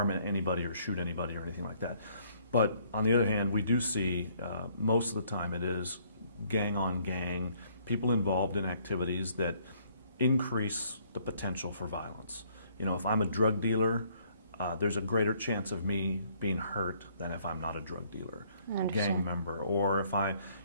anybody or shoot anybody or anything like that. But on the other hand, we do see most of the time it is gang on gang, people involved in activities that increase the potential for violence. You know, if I'm a drug dealer, there's a greater chance of me being hurt than if I'm not a drug dealer, gang member. Or if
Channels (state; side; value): inverted; both; correlation -0.64